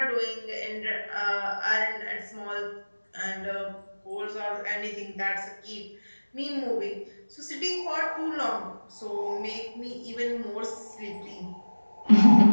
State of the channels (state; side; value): inverted; both; correlation -1.00